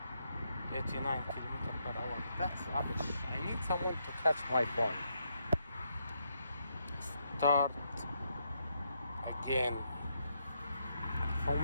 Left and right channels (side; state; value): both; inverted; correlation -0.78